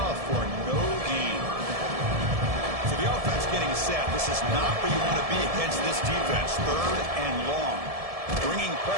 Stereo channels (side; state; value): left; late; 1.7 ms